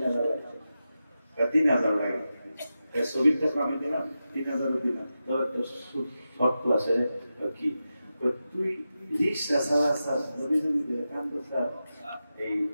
লাগে, 3,000 লাগে, ছবির টাকা আমি দিলাম 3,000 দিলাম, তোর একটা শর্ত আছে কি, তুই রিক্সা চালাচ্ছ নবী নবী কান্দ স্যার এই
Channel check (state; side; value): inverted; both; correlation -0.91